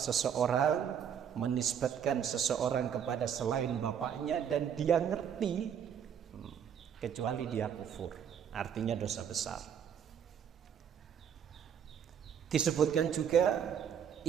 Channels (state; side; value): quieter; left; 8.4 dB